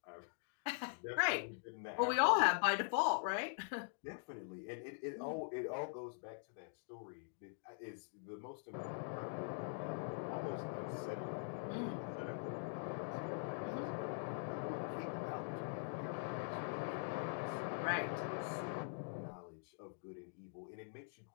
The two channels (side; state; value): right; silent; digital silence